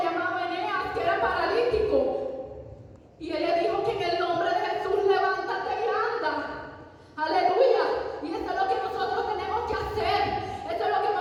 llamado Eneas que era paralítico. Y él le dijo que en el nombre de Jesús levántate y anda. Aleluya. Y eso es lo que nosotros tenemos que hacer. Eso es lo que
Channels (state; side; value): identical; both; correlation 1.00